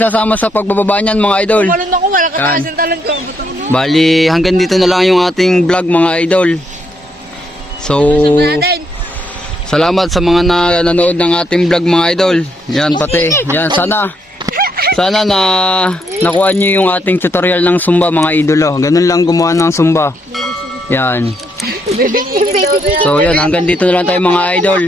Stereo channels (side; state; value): both; normal; correlation 0.76